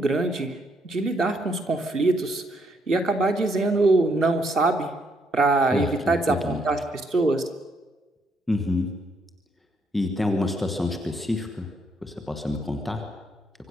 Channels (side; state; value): both; normal; correlation 0.73